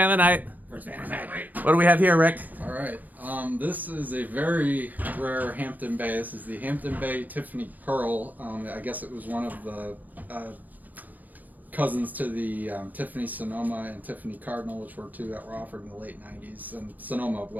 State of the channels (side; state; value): left; late; 0.082 ms